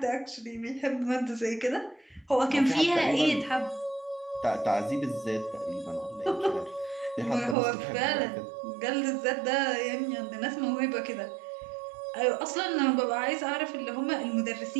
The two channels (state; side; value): drops out; left; at 7.6 s